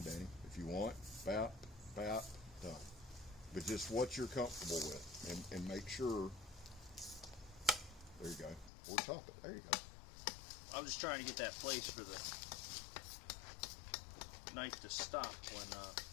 Danny, if you want. Bap, bap, done. But just what you're comfortable with, and make sure. There you go. Or top it. There you go. I'm just trying to get that place for the knife to stop when.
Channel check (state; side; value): drops out; right; at 8.7 s